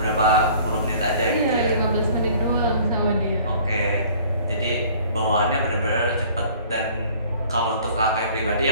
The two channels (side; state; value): both; inverted; correlation -0.52